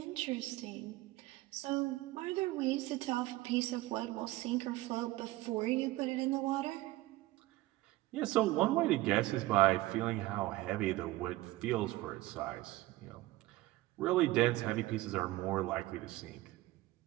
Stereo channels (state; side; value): quieter; left; 18.1 dB